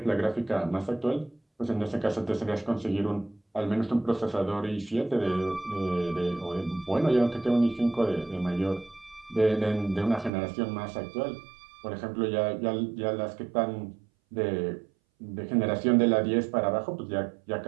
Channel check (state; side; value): drops out; left; at 10.3 s